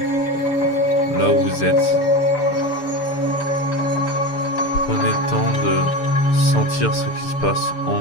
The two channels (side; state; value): right; late; 6.8 ms